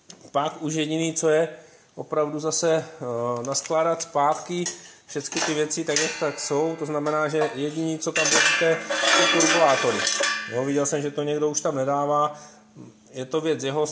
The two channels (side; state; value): both; identical; correlation 1.00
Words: pak už jediný, co je opravdu zase naskládat zpátky všechny ty věci tak, jak tak jsou, to znamená, že jediný, co tam budete, jsou turbulátory. Jo, viděl jsem, že to někdo už tam nedává, je to věc jeho,